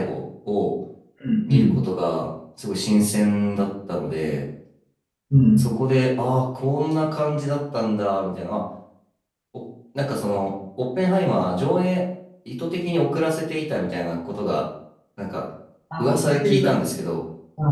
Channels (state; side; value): identical; both; correlation 1.00